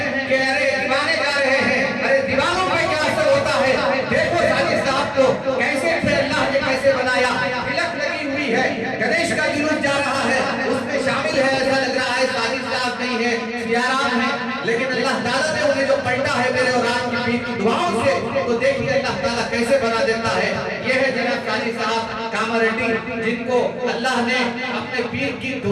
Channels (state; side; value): identical; both; correlation 1.00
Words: کہ ارے دیوانے جا رہے ہیں، ارے دیوانوں پہ کیا اثر ہوتا ہے، دیکھو ساجد صاحب کو کیسے تھے، اللہ نے کیسے بنایا، تلک لگی ہوئی ہے، گنیش کا جلوس جا رہا ہے، اس میں شامل ہے، ایسا لگ رہا ہے ساجد صاحب نہیں ہے، سیارام ہے، لیکن اللہ تعالیٰ نے انہیں جو پلٹا ہے میرے اور آپ کی دعاؤں سے تو دیکھیے اللہ تعالیٰ کیسے بنا دیتا ہے۔ یہ ہے جناب ساجد صاحب کامریڈی، جن کو اللہ نے اپنے پیر کی